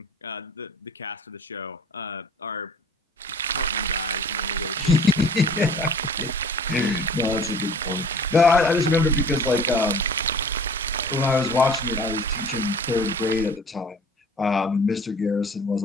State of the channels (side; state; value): both; normal; correlation 0.48